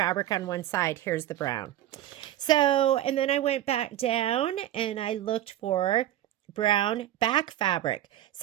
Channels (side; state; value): left; quieter; 13.1 dB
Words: on one side. Here's the brown. So, and then I went back down and I looked for brown back fabric.